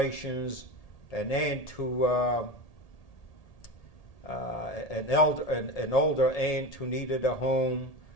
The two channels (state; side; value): late; right; 1.8 ms